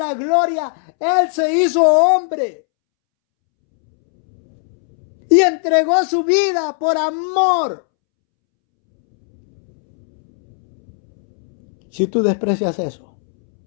gloria, Él se hizo hombre. Y entregó su vida por amor. Si tú desprecias eso,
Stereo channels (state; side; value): silent; right; 68 dB below the other